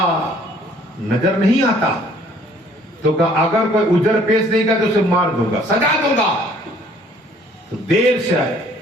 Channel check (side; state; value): both; normal; correlation 0.58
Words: نظر نہیں آتا. تو کہا اگر کوئی اجر پیش نہیں گا تو اسے مار دوں گا, سجا دوں گا. تو دیر سے آئے